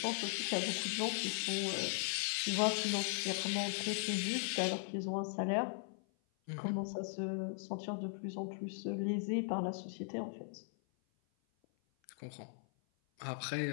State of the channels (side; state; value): right; silent; 52 dB below the other